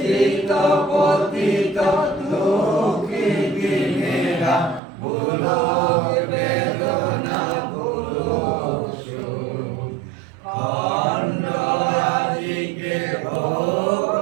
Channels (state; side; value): drops out; left; at 4.8 s